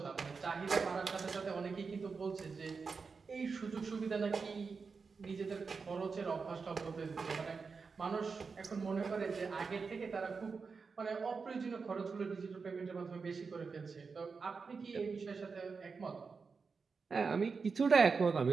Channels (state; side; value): quieter; left; 5.0 dB